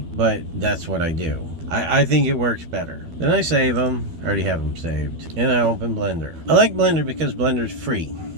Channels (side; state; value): left; late; 12 ms